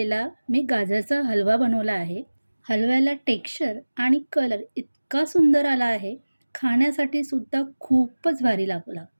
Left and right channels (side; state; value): both; inverted; correlation -1.00